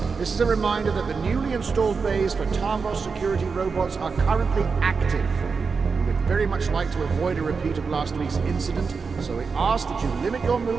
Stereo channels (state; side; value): quieter; left; 5.1 dB